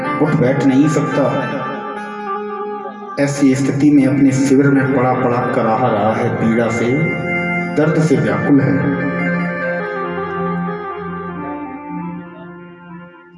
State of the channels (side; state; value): both; identical; correlation 1.00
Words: उठ बैठ नहीं सकता। ऐसी स्थिति में अपने शिविर में पड़ा पड़ा कराह रहा है, पीड़ा से, दर्द से व्याकुल है।